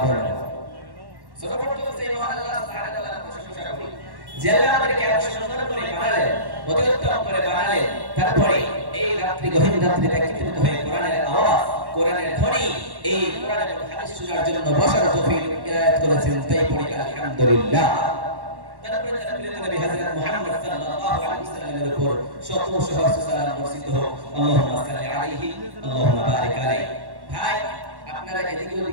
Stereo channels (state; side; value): late; left; 1.1 ms